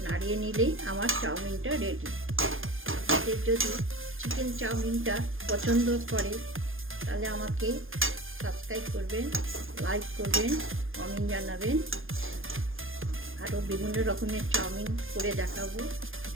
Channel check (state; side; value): late; left; 0.59 ms